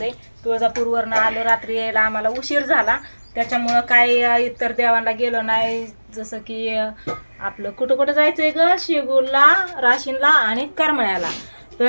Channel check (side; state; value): both; inverted; correlation -1.00